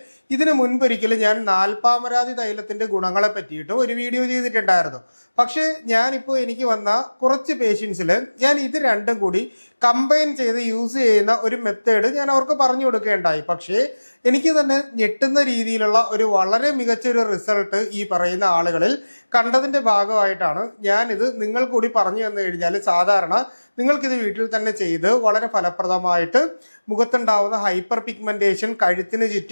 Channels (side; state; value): both; inverted; correlation -1.00